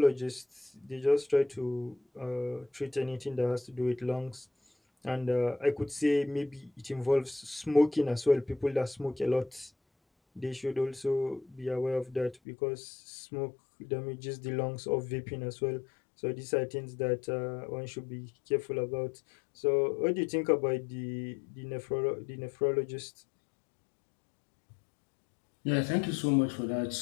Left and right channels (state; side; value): drops out; right; at 12.4 s